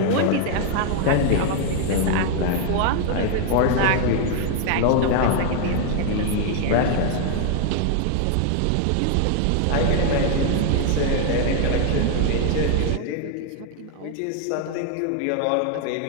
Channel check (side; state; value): both; different; correlation 0.00